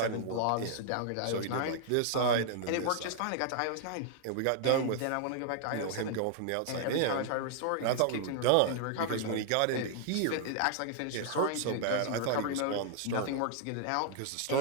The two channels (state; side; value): different; both; correlation -0.01